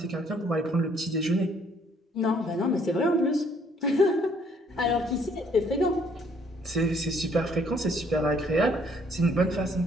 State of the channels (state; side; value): normal; both; correlation 0.64